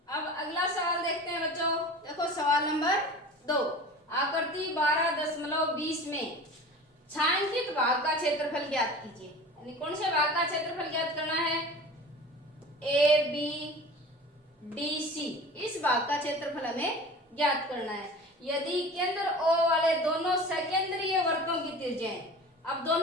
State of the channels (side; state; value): both; normal; correlation 0.38